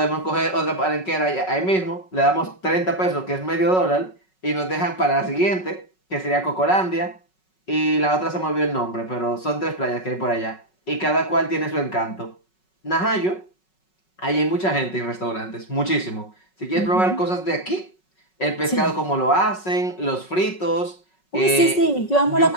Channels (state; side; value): late; right; 5.4 ms